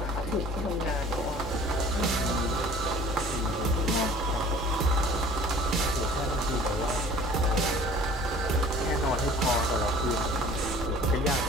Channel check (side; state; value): both; normal; correlation 0.48